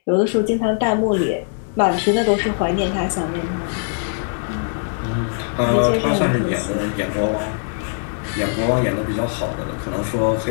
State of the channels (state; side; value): silent; right; digital silence